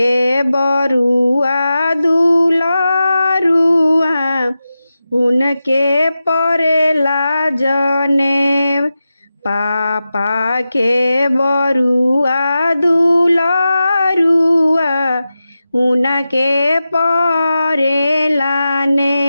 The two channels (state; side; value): inverted; both; correlation -0.92